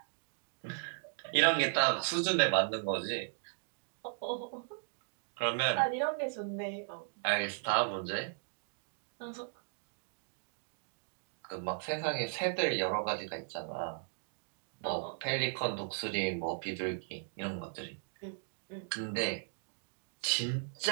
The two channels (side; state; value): left; silent; digital silence